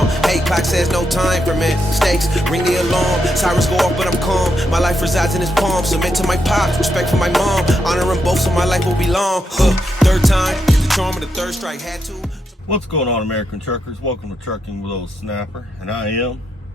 Hey, clock says no time for mistakes. Ring the alarm, sirens go off, but I'm calm. My life resides in his palm. Submit to my pops, respect for my mom. Honor them both, so my life will be long. Third time, get the charm of the third strike. Had to. What's going on, American truckers? Welcome to Trucking with Ole Snapper, and I am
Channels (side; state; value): both; normal; correlation 0.81